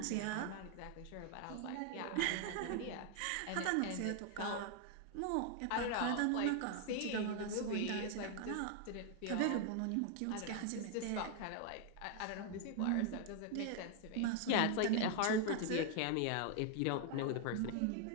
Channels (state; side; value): different; both; correlation 0.00